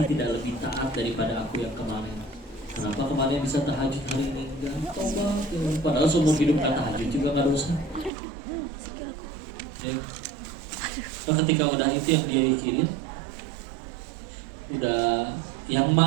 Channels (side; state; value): left; drops out; at 8.1 s